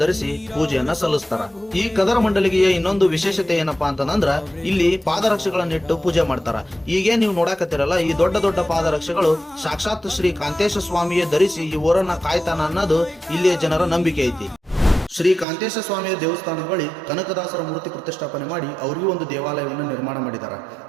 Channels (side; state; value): left; drops out; at 15.5 s